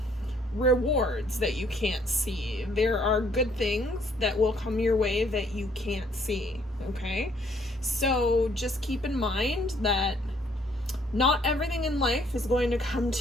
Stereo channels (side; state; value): both; normal; correlation 0.65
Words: rewards that you can't see. There are good things that will come your way that you can't see, okay? So just keep in mind that not everything in life is going to come